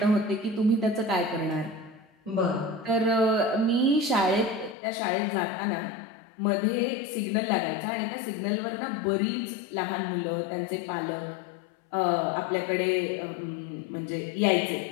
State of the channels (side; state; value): right; drops out; at 4.8 s